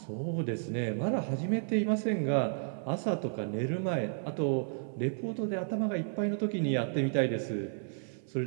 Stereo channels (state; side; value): silent; left; 56 dB below the other